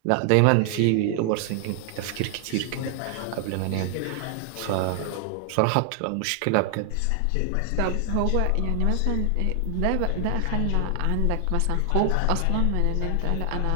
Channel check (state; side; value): different; both; correlation 0.00